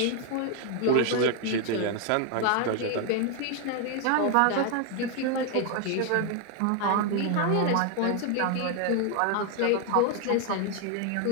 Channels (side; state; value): both; different; correlation 0.01